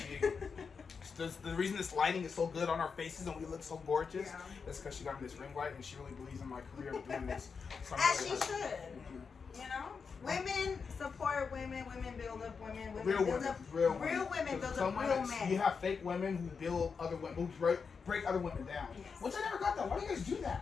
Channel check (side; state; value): right; quieter; 5.5 dB